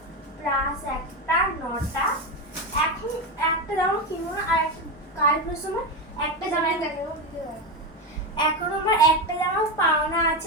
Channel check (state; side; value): normal; both; correlation 0.14